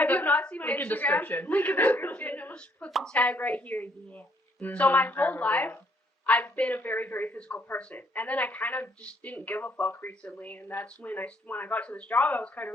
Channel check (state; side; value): normal; both; correlation 0.67